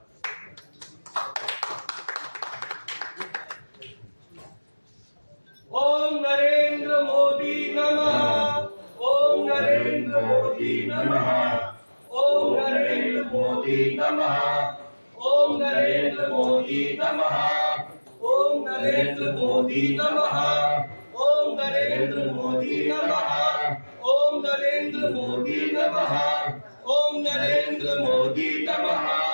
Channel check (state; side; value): inverted; both; correlation -1.00